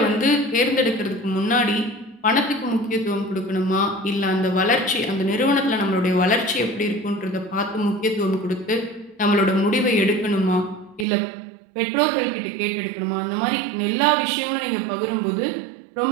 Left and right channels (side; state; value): left; drops out; at 11.1 s